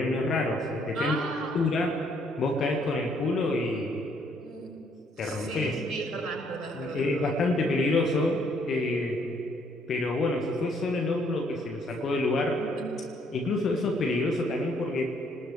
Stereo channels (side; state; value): both; normal; correlation 0.68